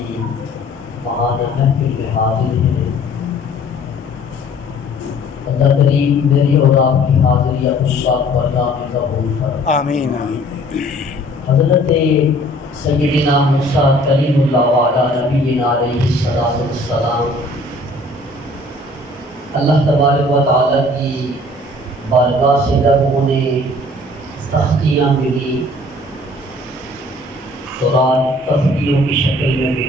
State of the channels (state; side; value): normal; both; correlation 0.53